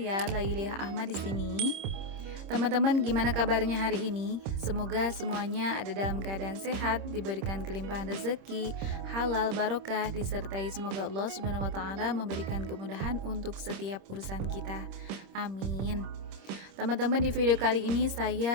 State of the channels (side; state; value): left; late; 26 ms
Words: Lailiah Ahmad di sini. Teman-teman, gimana kabarnya hari ini? Semoga semuanya ada dalam keadaan sehat, diberikan kelimpahan rezeki, halal, barokah, disertai semoga Allah Subhanahu wa taala memberikan kemudahan untuk setiap urusan kita. Amin. Teman-teman, di video kali ini